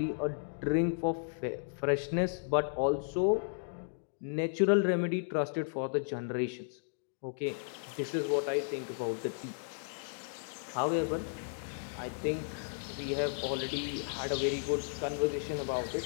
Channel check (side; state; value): right; silent; digital silence